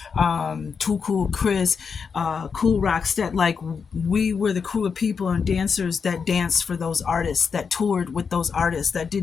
Too Cool Chris, Cool Rockstead, like we were the crew of people and dancers that danced for those artists, that toured with those artists, that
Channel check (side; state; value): right; quieter; 5.9 dB